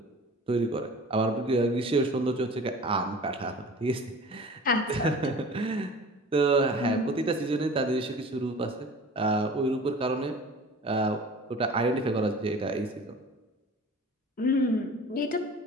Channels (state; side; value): normal; both; correlation 0.42